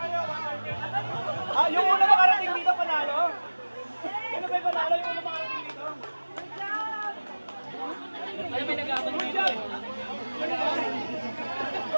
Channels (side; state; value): both; inverted; correlation -1.00